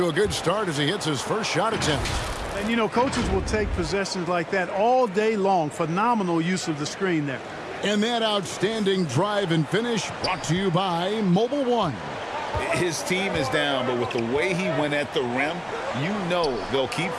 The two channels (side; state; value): both; identical; correlation 1.00